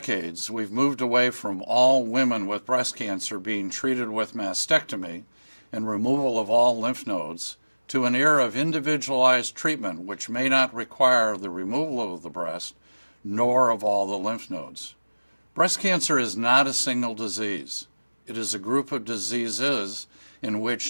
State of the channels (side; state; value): both; inverted; correlation -1.00